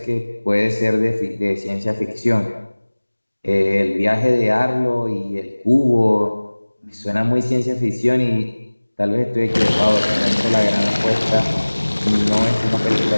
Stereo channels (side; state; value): both; inverted; correlation -1.00